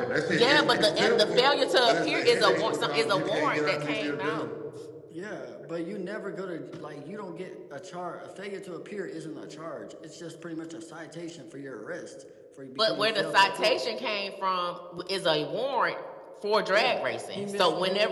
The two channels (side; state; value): both; identical; correlation 1.00